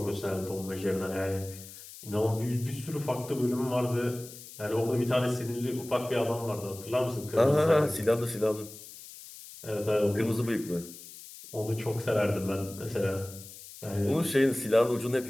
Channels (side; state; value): left; noise; hiss, 16 dB below the sound